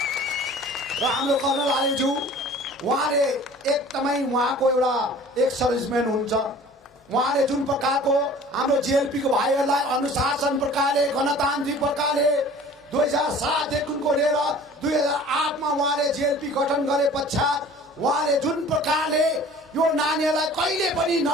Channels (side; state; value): both; normal; correlation 0.46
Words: र हाम्रो कर्नल आलेज्यू, उहाँले एकदमै उहाँको एउटा एक सर्भिसम्यान हुन्छ। उहाँले जुन प्रकारको हाम्रो जेएलपीको भाइहरूलाई अनुशासन प्रकारले, गणतान्त्रिक प्रकारले 2007 देखिको लिएर 2008 मा उहाँले जेएलपी गठन गरे पश्चात उहाँले जुन प्रकारले यो नानीहरूलाई कहिले पनि